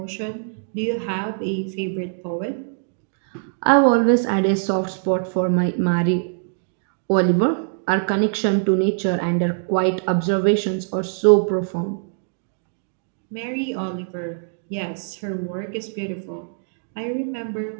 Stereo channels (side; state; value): left; silent; digital silence